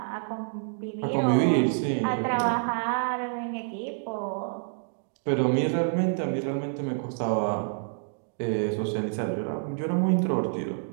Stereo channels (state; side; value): silent; left; 59 dB below the other